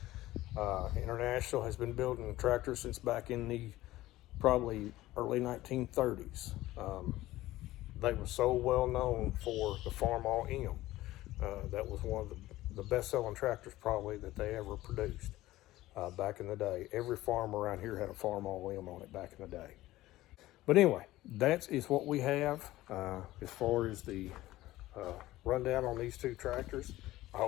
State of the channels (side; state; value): right; quieter; 16.5 dB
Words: International has been building tractors since back in the probably early 1930s. They were so well known for the Farm All M. That was one of the best-selling tractors probably that they ever produced back in the day. Every farm around here had a Farm All M on it back in the day. But anyway, that is what we have as far as the rundown on these 2 tractors. I